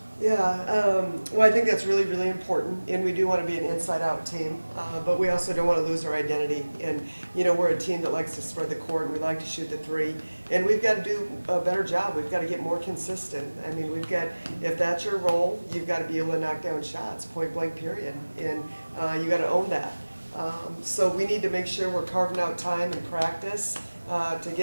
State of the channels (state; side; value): inverted; both; correlation -1.00